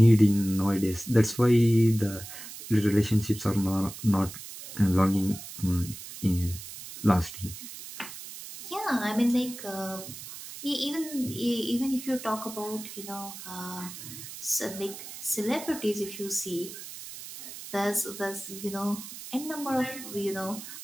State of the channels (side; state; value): right; noise; hiss, 12 dB below the sound